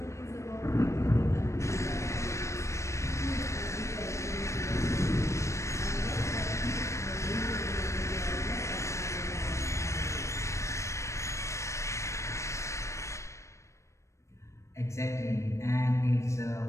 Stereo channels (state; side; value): late; right; 0.14 ms